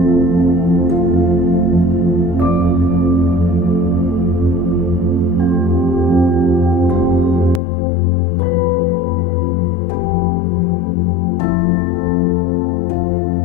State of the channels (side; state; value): right; drops out; at 7.6 s